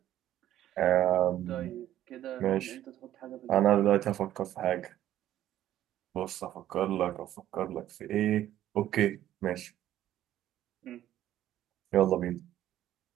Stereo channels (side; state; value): left; quieter; 12.6 dB